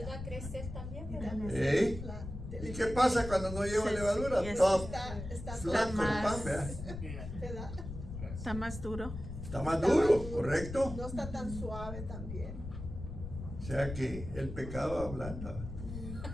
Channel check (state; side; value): noise; left; rumble, 9 dB below the sound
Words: a crecer también, ¿verdad? ¿Eh? ¿Y qué pasa cuando no lleva levadura? Sí, Todo Está flaco el más- pan, ¿verdad? ¿verdad? Está más duro. Está más duro, ¿correcto? No está tan suave también. O sea que el pecado ablanda.